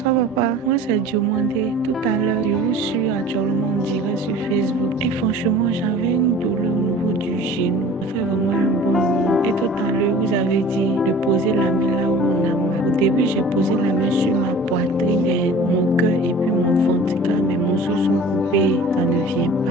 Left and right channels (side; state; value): both; normal; correlation 0.44